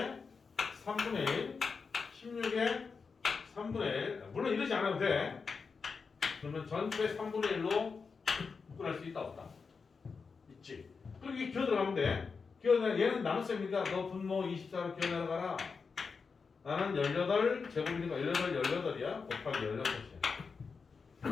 3분의 1 16에 3분의 1. 물론 이러지 않아도 돼. 그러면 전체 3분의 1로 묶어낼 수 있다 없다? 있지. 그럼 이게 기어 들어가면 돼. 얘는 나눗셈이니까 너 분모 24로 기어 내려가라. 나는 18제곱이니까 18이야. 곱하기 16이야.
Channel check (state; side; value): quieter; right; 5.1 dB